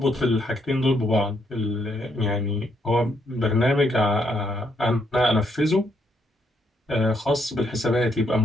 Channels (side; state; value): both; normal; correlation 0.74